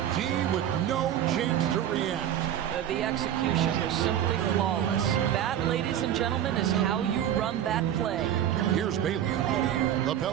D with no chance to react. The execution was simply flawless. That, ladies and gentlemen, is how you run that play. Here's Baylor. The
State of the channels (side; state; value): left; quieter; 10.7 dB